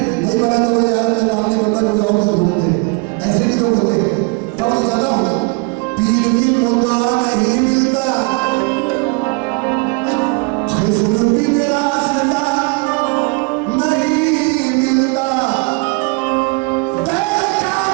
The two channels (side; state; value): left; quieter; 29.8 dB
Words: नहीं बना तो बोले यार मेरा काम नहीं बन रहा, कोई और कर ढूंढते, ऐसे भी लोग होते हैं। तब ज्यादा हूँ, पीर मिल मुद्दा नहीं मिलता, खिस्र भी मेरा